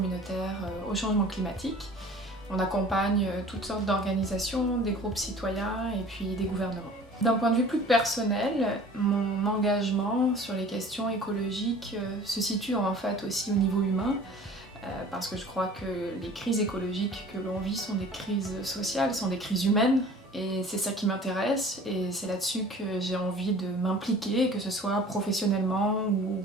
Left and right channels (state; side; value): normal; both; correlation 0.46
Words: au changement climatique. On accompagne toutes sortes d'organisations, des groupes citoyens et puis des gouvernements. D'un point de vue plus personnel, mon engagement sur les questions écologiques se situe en fait aussi au niveau humain, parce que je crois que les crises écologiques que l'on vit sont des crises sociales, sont des crises humaines, et c'est ça qui m'intéresse, et c'est là-dessus que j'ai envie de m'impliquer, que ce soit professionnellement ou